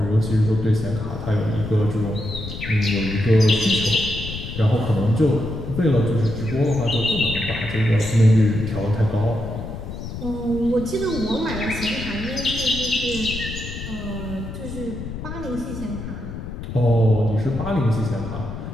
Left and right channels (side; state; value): left; noise; rumble, 8 dB below the sound